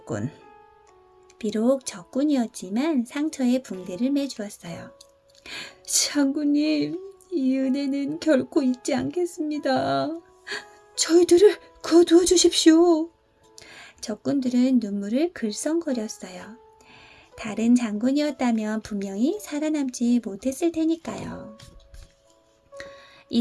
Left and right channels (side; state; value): both; identical; correlation 1.00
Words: 비록 적군이었지만 상처에 붕대를 매주었어요. 장군님, 이 은혜는 결코 잊지 않겠습니다. 저희들을 거두어 주십시오. 적군들은 눈물을 글썽거렸어요. 다른 장군이었다면 분명히 살아남지 못했을 테니까요.